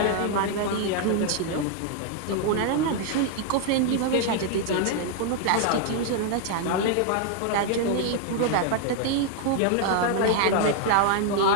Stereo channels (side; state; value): both; different; correlation 0.00